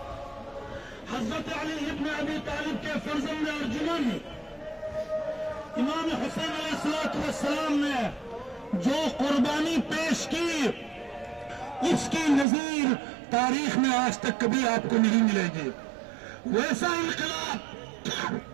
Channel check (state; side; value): drops out; left; at 12.5 s